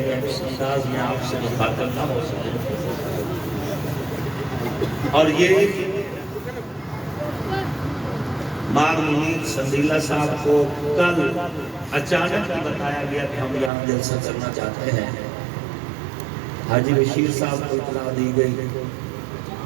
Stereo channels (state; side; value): drops out; left; at 13.7 s